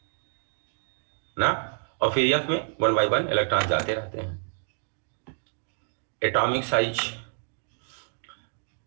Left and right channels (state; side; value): silent; left; 59 dB below the other